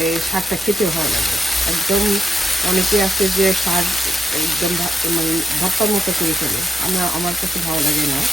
এই শাকটা খেতে ভালো লাগে। একদম অনেকে আছে যে শাক একদম মানে ভর্তার মতো করে ফেলে, আমার কাছে ভালো লাগে না।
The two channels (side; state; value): both; normal; correlation 0.83